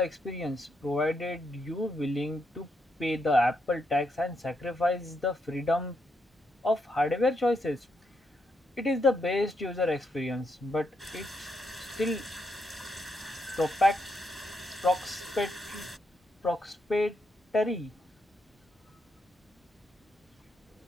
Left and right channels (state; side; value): normal; both; correlation 0.79